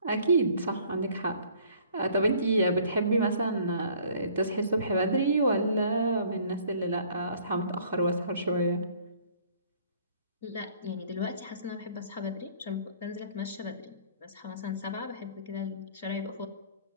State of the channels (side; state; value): both; inverted; correlation -0.56